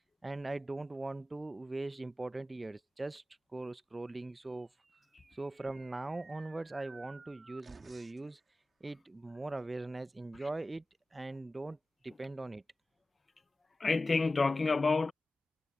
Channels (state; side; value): normal; both; correlation 0.95